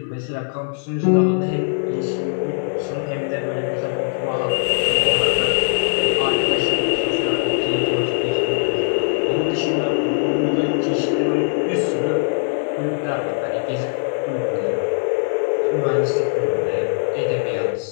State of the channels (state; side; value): silent; right; digital silence